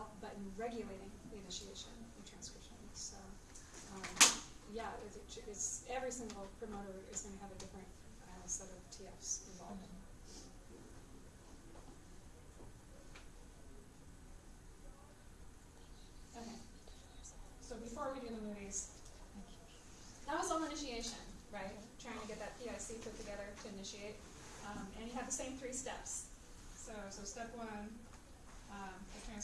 but in regulating the initiation and transcription. So yeah, it's every single promoter is going to have a different set of TFs involved. Okay, so before we do the movies, that was all initiation, right? Trying to get that PIC put together to initiate. And you have the same 3 steps. So step 1, the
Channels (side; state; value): both; identical; correlation 1.00